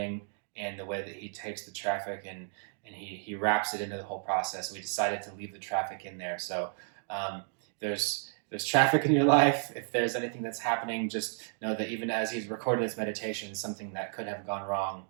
and the way that he takes the traffic and he wraps it into the whole process. We decided to leave the traffic in there. So there's traffic in your life. If there's anything that's happening, just know that even as he's recording this meditation, something that could have gone wrong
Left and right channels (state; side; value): silent; left; 56 dB below the other